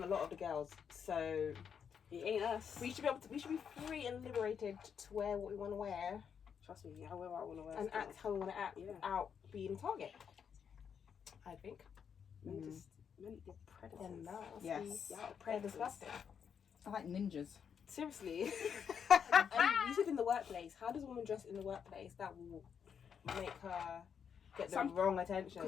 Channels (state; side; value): quieter; right; 7.4 dB